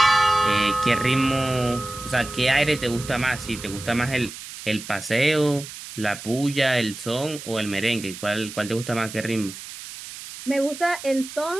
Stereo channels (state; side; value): noise; right; hiss, 12 dB below the sound